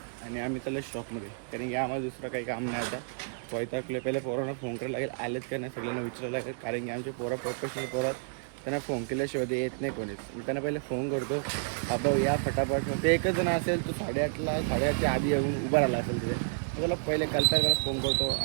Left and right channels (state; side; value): silent; left; digital silence